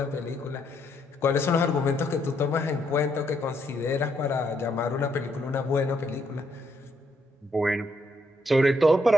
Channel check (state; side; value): normal; both; correlation 0.74